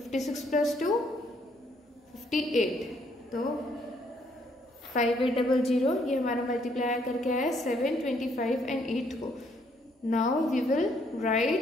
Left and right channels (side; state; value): both; normal; correlation 0.69